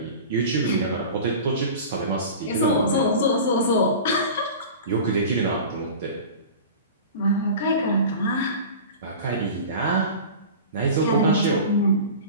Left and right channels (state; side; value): inverted; both; correlation -0.35